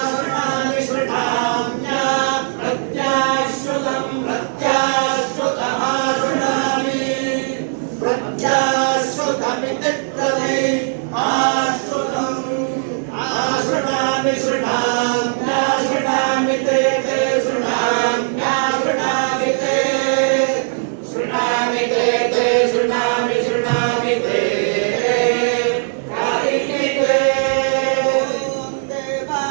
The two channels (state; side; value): silent; left; digital silence